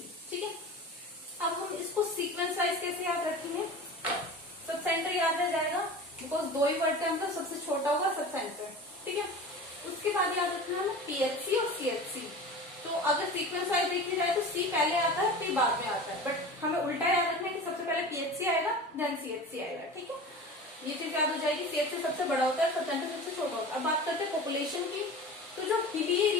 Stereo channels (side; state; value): both; normal; correlation 0.35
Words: ठीक है, अब हम इसको सीक्वेंस वाइज कैसे याद रखेंगे। सब सेंटर याद रह जाएगा बिकॉज 2 ही वर्ड का अंतर, सबसे छोटा होगा सब सेंटर। ठीक है, उसके बाद याद रखना है पीएचसी और सीएचसी। तो अगर सीक्वेंस वाइज देखी जाए तो सी पहले आता है फिर बाद में आता है, बट हमें उल्टा याद रखना है कि सबसे पहले पीएचसी आएगा देन सीएचसी आएगा। ठीक है, ये चीज याद हो जाएगी। सीएचसी सबसे बड़ा होता है, सब सेंटर सबसे छोटा होता है। अब बात करते हैं पॉपुलेशन की। तो जो हिली